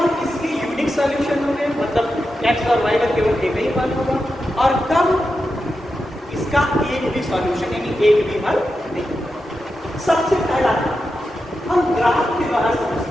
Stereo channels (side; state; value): both; normal; correlation 0.89